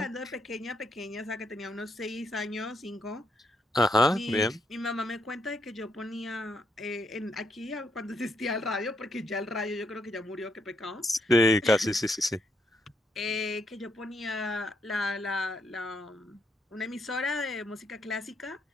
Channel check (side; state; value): both; normal; correlation 0.76